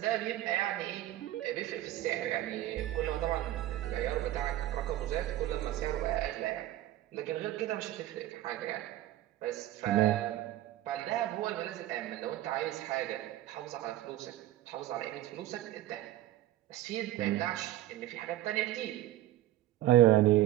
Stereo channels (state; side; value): quieter; left; 14.5 dB